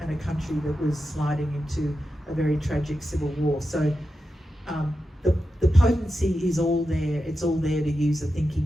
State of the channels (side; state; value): both; normal; correlation 0.90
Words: country that was sliding into a very tragic civil war. So the potency is all there. It's all there to use a